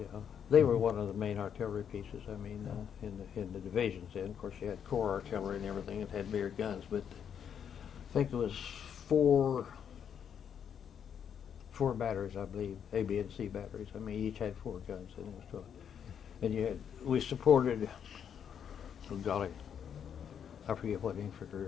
they were one of the main artillery pieces. I mean, in the divisions. Then, of course, you had corps artillery and everything. It had bigger guns, but I think it was four batteries, I believe, A, B, and C batteries. I mean, each had 4 guns, and it was 12. And we supported, oh golly, I forget what infantry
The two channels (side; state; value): right; quieter; 8.2 dB